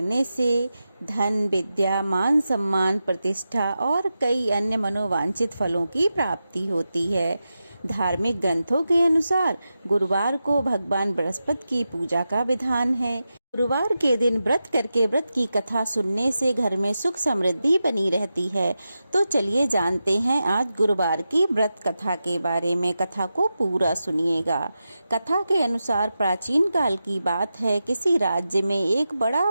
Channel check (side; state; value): both; inverted; correlation -0.91